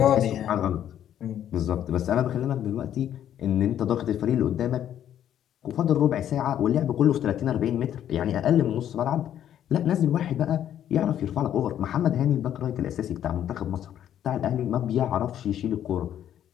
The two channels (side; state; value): right; quieter; 10.6 dB